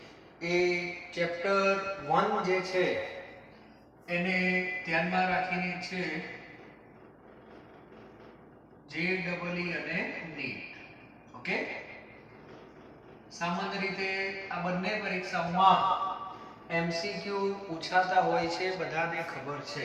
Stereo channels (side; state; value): both; identical; correlation 1.00